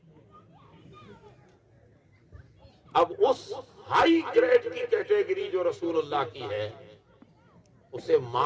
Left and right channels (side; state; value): both; identical; correlation 1.00